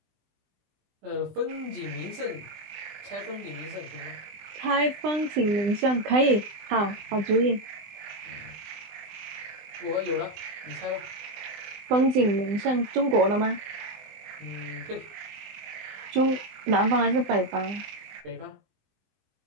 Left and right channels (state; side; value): late; left; 20 ms